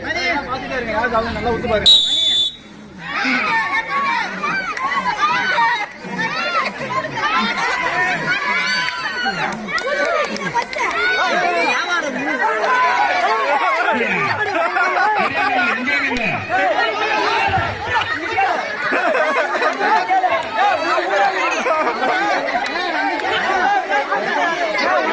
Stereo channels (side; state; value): both; identical; correlation 1.00